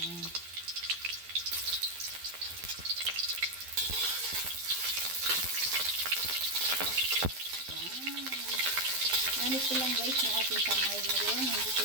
Yan. Gamit ko lang guys yung ating kamay ngayon. Hindi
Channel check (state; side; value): late; left; 12 ms